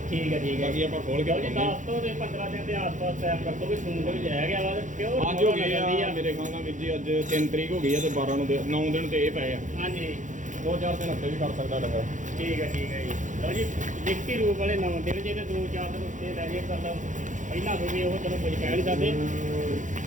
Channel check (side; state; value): left; late; 0.36 ms